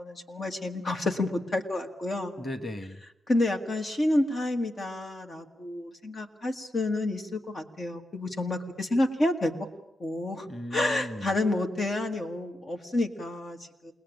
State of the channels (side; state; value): both; normal; correlation 0.86